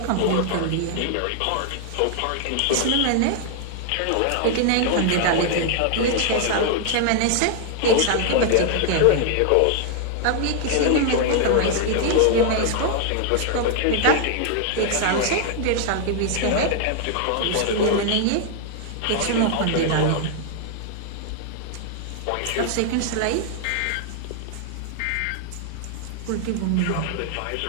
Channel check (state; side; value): different; both; correlation 0.00